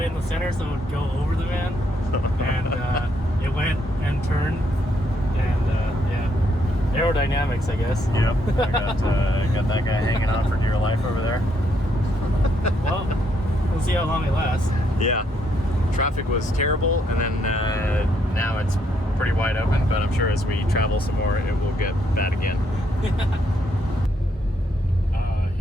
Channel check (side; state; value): both; normal; correlation 0.74